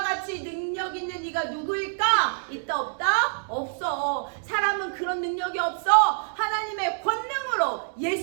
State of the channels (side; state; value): left; silent; digital silence